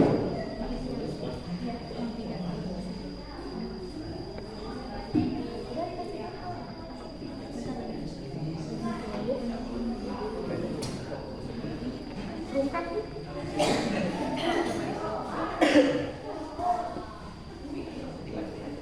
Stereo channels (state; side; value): identical; both; correlation 1.00